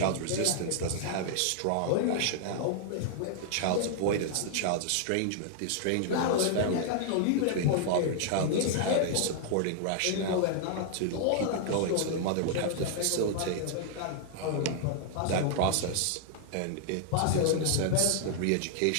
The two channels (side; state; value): both; different; correlation 0.00